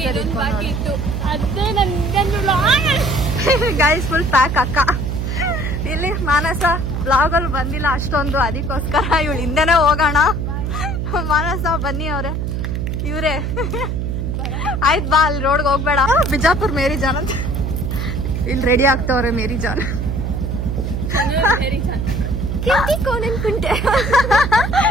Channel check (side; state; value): right; noise; hum, 2 dB below the sound